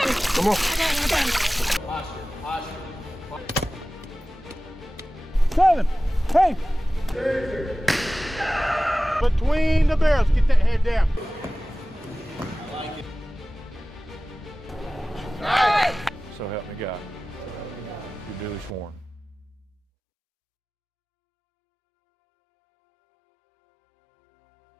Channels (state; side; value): normal; both; correlation 0.97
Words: Come on. Seven. Hey. Between the barrels. Get that head down. I like it. Nice. So help me God. You're duly sworn.